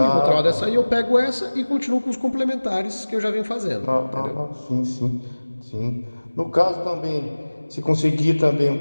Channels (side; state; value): both; inverted; correlation -1.00